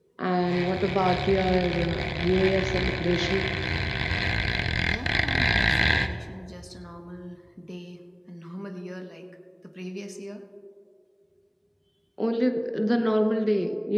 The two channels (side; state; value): both; identical; correlation 1.00